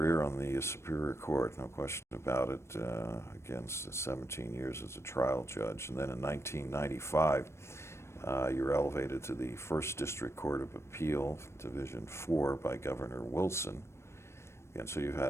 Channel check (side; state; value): right; late; 0.13 ms